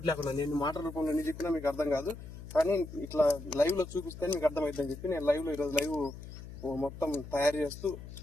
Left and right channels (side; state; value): left; noise; hum, 13 dB below the sound